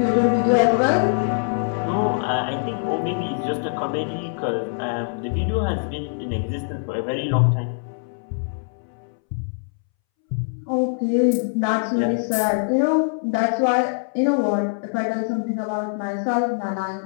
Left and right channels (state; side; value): silent; right; 63 dB below the other